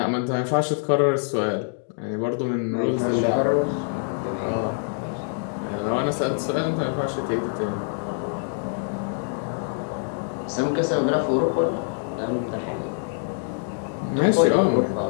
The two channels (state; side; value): silent; right; digital silence